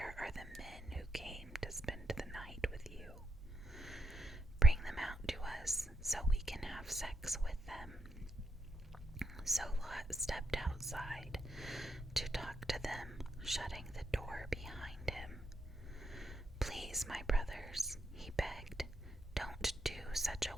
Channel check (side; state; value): both; normal; correlation 0.81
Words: are the men who came to spend the night with you? Bring them out to us so we can have sex with them." So Lot stepped outside to talk to them, shutting the door behind him. "Please, my brothers," he begged, "don't do such a